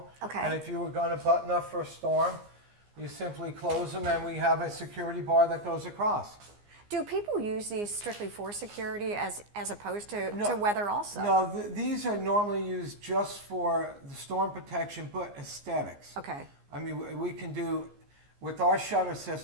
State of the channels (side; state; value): left; late; 15 ms